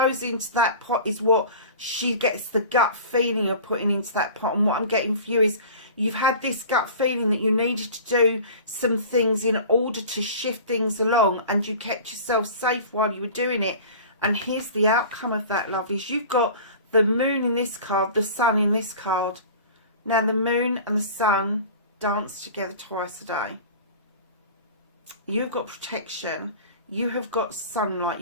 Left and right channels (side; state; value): both; inverted; correlation -0.40